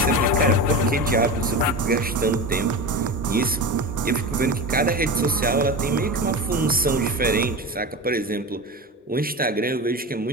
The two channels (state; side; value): normal; both; correlation 0.26